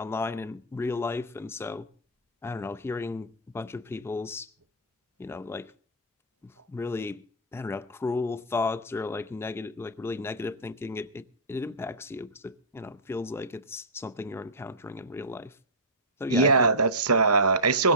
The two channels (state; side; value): normal; both; correlation -0.16